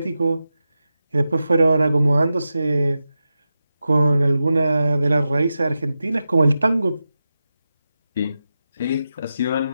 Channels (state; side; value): inverted; both; correlation -0.91